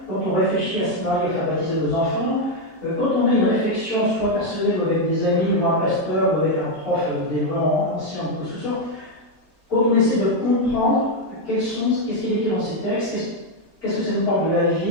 quand on réfléchit à ce qu'on arrive à faire baptiser nos enfants, quand on a une réflexion soit personnelle ou avec des amis, ou un pasteur, ou avec un prof d'éléments anciens ou ce soit, quand on essaie de comprendre qu'est-ce qui est écrit dans ces textes, qu'est-ce que ça nous parle de la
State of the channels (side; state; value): right; late; 2.5 ms